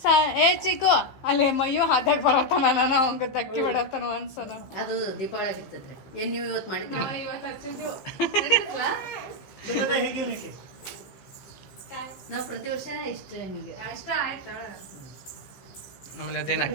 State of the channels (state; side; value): late; right; 15 ms